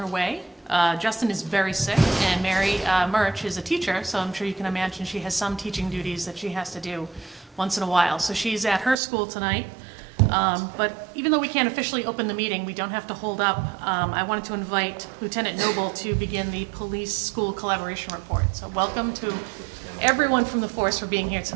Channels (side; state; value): left; drops out; at 9.0 s